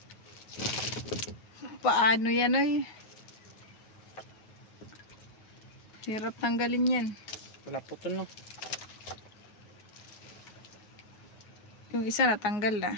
Paano yan oy? Hirap tanggalin yan. Wala putol na. Yung isa natanggal na.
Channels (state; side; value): late; right; 9.5 ms